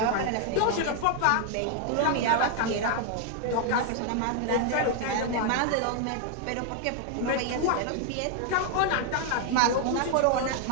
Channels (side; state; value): both; different; correlation 0.00